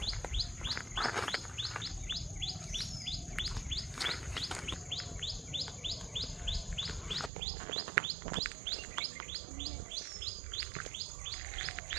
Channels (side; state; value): left; drops out; at 7.3 s